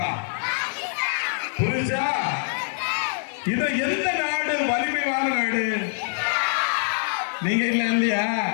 புரிஞ்சா? இது எந்த நாடு வலிமையான நாடு? நீங்க இல்ல இல்லையா?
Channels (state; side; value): silent; right; digital silence